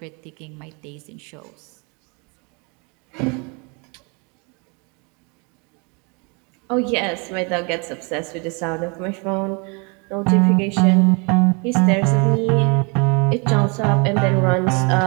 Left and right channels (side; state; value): left; quieter; 32.1 dB